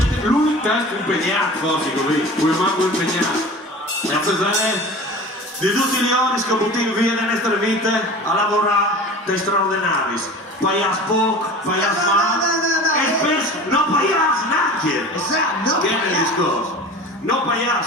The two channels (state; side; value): normal; both; correlation 0.37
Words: lui testo impegnato, forse così, poi manco impegnato. E a pesare di tutti gli ori che buttano via nelle nostre vite a lavorare dei straordinari. Paias poco, paias male, e spesso non paias neanche. Esatto, Che è il discorso? Non